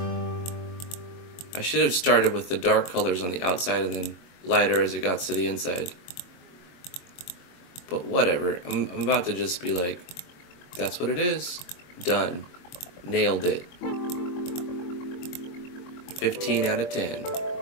I should have started with the dark colors on the outside and then lighter as it got to the inside. But whatever, I'm about to just be like, that's what it is. Done. Nailed it. 15 out of 10.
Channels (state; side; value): late; right; 22 ms